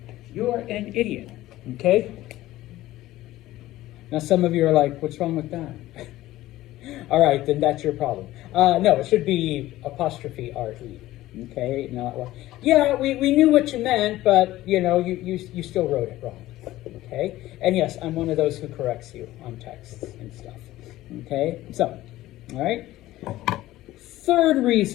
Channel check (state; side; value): quieter; right; 16.0 dB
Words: you're an idiot, okay? Now some of you are like, what's wrong with that? All right, then that's your problem. No, it should be apostrophe R-E, okay? Not, well, yeah, we knew what you meant, but you know, you still wrote it wrong, okay? And yes, I'm one of those who corrects you on texts and stuff, okay? So, all right? Third